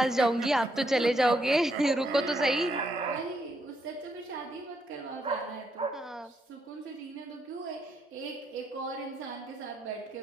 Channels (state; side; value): normal; both; correlation 0.77